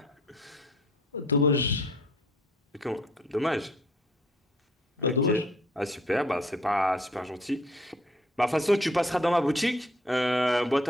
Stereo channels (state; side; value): normal; both; correlation 0.59